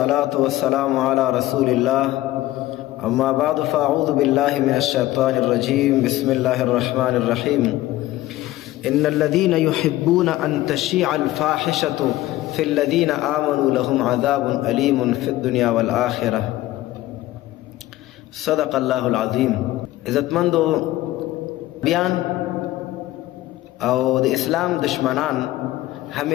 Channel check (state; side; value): quieter; right; 16.1 dB